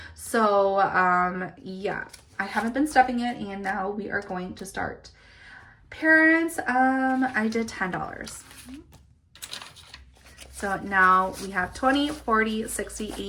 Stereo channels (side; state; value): both; identical; correlation 1.00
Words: So, yeah, I haven't been stuffing it, and now we are going to start. Parents, I did $10. So now we have 20, 40, 60,